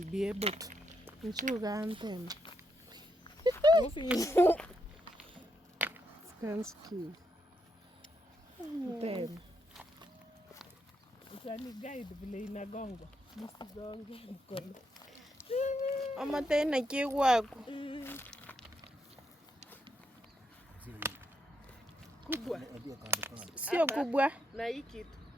be able to. Nchuga Skansky. Then. Utani guide vile inagonga. Nisigonge mkono. Mama tena kiwako. Kubwa. Sio kubwa. Na hii kitu.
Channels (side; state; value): both; normal; correlation 0.80